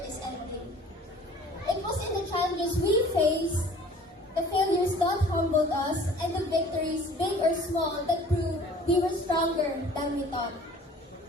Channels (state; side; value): normal; both; correlation 0.49